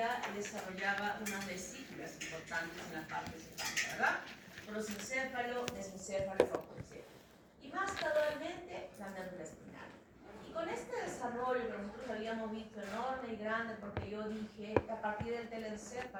desarrollaba unas vesículas importantes en la parte cefálica, ¿verdad? Prosencéfalo, mesencéfalo, tropoencéfalo. Y más gradualmente la médula espinal. Y con este desarrollo que nosotros habíamos visto enorme y grande, porque yo dije que a partir del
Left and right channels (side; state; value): both; identical; correlation 1.00